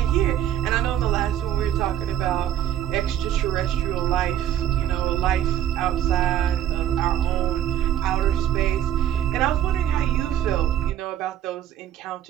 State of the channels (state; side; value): quieter; left; 11.1 dB